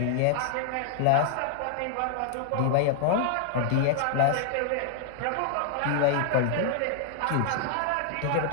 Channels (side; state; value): both; different; correlation -0.01